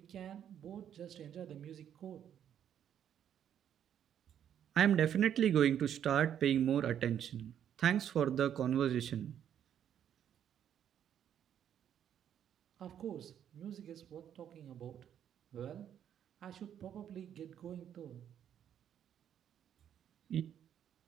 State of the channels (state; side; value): quieter; left; 9.6 dB